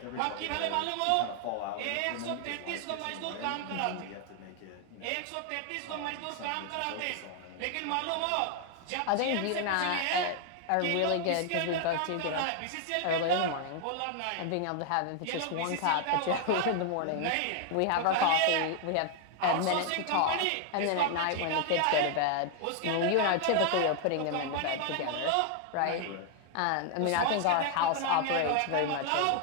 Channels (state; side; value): different; both; correlation 0.00